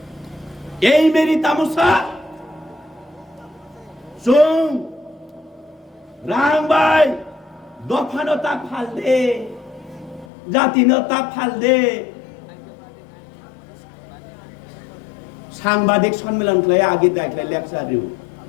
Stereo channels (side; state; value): right; drops out; at 10.2 s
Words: এই মেরি তামসা সুং রাংবাই দফানতা ফাল দে জাতিনতা ফাল দে সাংবাদিক সম্মেলন খাই আগে দেখলে লেকচার দিও